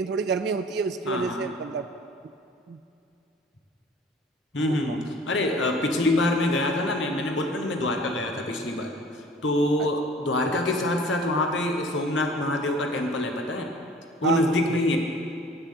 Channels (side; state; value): both; normal; correlation 0.48